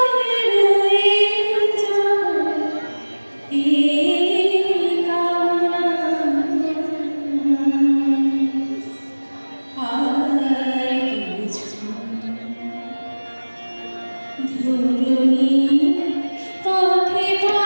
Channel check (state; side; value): inverted; both; correlation -1.00